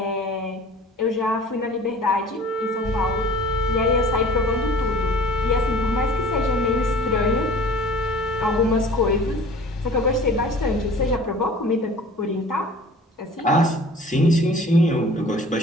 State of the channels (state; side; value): normal; both; correlation 0.46